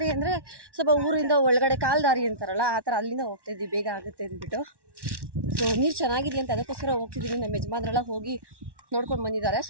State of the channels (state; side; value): late; left; 1.1 ms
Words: ಅಂದರೆ ಸ್ವಲ್ಪ ಊರಿಂದ ಒಳಗಡೆ ಕಾಲು ದಾರಿ ಅಂತಾರಲ್ಲ, ಆ ಥರ ಅಲ್ಲಿಂದ ಹೋಗ್ತಾ ಇದ್ದೀವಿ, ಬೇಗ ಆಗುತ್ತೆ ಅಂದ್ಬಿಟ್ಟು. ಸೊ ನೀರು ಚೆನ್ನಾಗಿದೆ ಅಂತ ಅದಕ್ಕೋಸ್ಕರ ಹೋಗ್ತಿದ್ದೀವಿ. ನಮ್ಮ ಯಜಮಾನ್ರೆಲ್ಲ ಹೋಗಿ ನೋಡ್ಕೊಂಡು ಬಂದಿದ್ದಾರೆ.